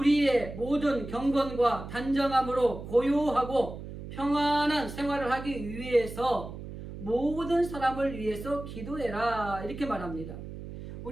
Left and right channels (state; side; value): noise; right; hum, 11 dB below the sound